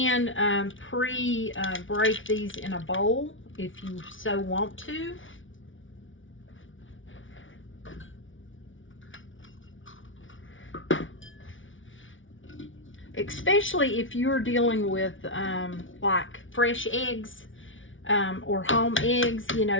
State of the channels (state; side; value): late; right; 0.57 ms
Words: break these in a bowl if you so want to. Especially if you're dealing with like fresh eggs. Or home eggs, you